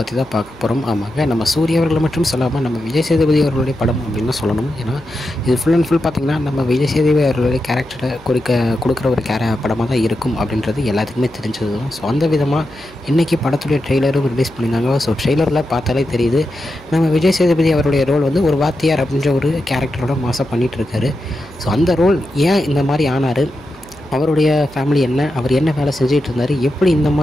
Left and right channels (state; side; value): noise; left; hum, 25 dB below the sound